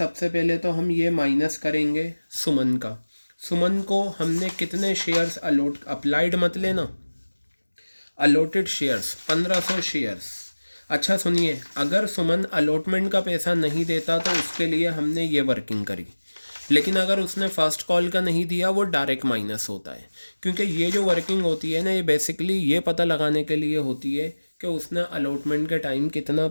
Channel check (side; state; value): both; inverted; correlation -1.00